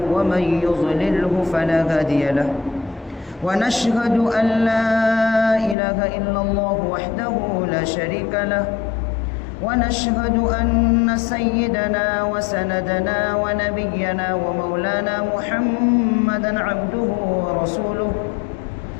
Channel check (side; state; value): right; drops out; at 5.8 s